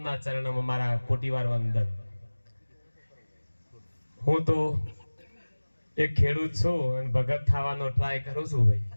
ચરણોમાં મારા કોટીવાર વંદન। હું તો એક ખેડૂત છું અને ભગત થવાનો ટ્રાય કરું છું ભાઈ।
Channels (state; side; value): inverted; both; correlation -1.00